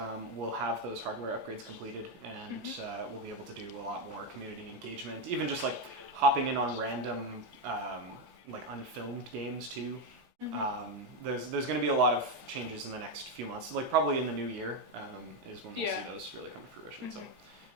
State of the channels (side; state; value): left; late; 15 ms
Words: we'll have those hardware upgrades completed, and we'll be able to do a lot more community engagement, even just like hopping in on random like unfilmed games too. There's going to be a lot of changes in the next few months. Like probably in the new year is when we'll see those really come to fruition. So